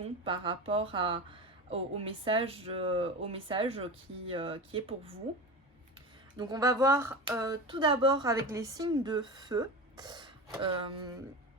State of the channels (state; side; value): normal; both; correlation 0.27